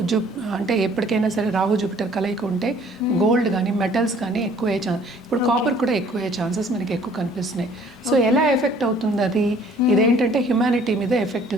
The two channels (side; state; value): both; normal; correlation 0.56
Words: అంటే ఎప్పటికైనా సరే రాహు జూపిటర్ కలయిక ఉంటే గోల్డ్ కానీ మెటల్స్ కానీ ఎక్కువ అయ్యే ఛాన్స్, ఇప్పుడు కాపర్ కూడా ఎక్కువ అయ్యే ఛాన్సెస్ మనకి ఎక్కువ కనిపిస్తున్నాయి. సో ఎలా ఎఫెక్ట్ అవుతుంది అది, ఇదేంటంటే హ్యుమానిటీ మీద ఎఫెక్ట్